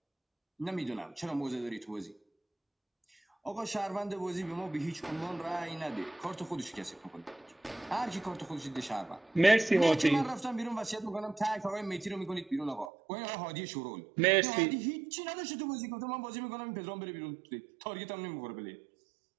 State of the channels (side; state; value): left; drops out; at 12.9 s